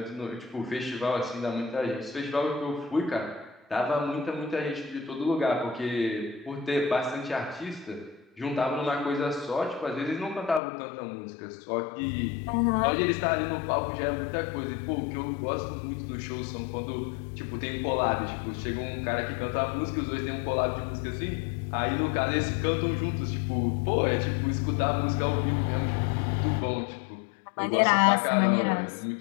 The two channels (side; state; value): right; drops out; at 10.6 s